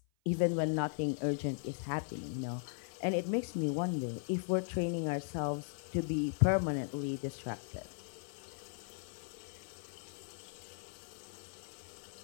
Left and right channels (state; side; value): silent; right; 52 dB below the other